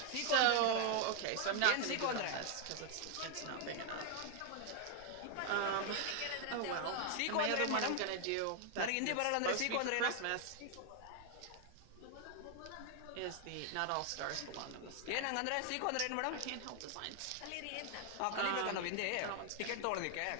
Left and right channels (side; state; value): both; different; correlation 0.00